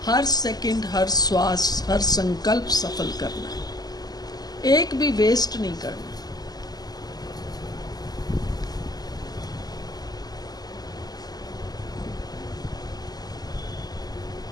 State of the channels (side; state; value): right; late; 0.19 ms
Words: हर सेकंड, हर श्वास, हर संकल्प सफल करना है, एक भी वेस्ट नहीं करना।